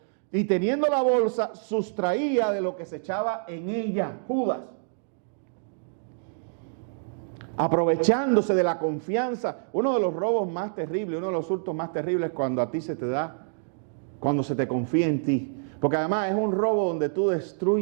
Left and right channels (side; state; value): left; silent; digital silence